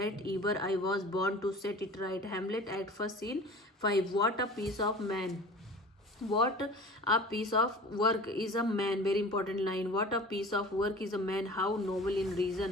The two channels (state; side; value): normal; both; correlation 0.41